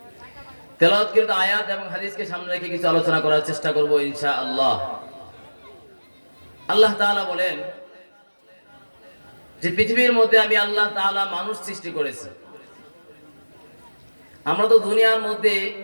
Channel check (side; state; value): both; inverted; correlation -1.00